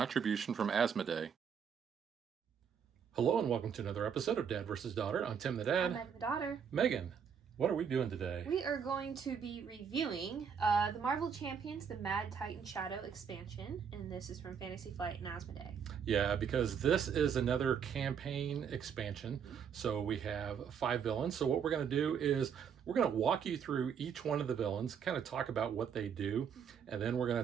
from Asmodee. Hello and welcome to another episode of Dad vs. Daughter. I'm Tim the Dad. I'm Megan the daughter. Megan, what are we doing today? We are going to be reviewing the Marvel Champions, the Mad Titan Shadow expansion, and this is from Fantasy Flight and Asmodee. Yeah, because this is another campaign expansion. So we have 5 villains. So what we're going to do is we're going to walk you through each one of the villains, kind of talk about what they do, and then we're going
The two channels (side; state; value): left; quieter; 7.2 dB